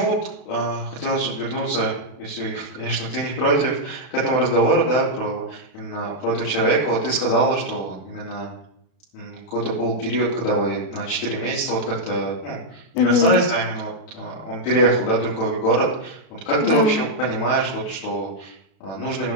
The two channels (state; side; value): late; right; 31 ms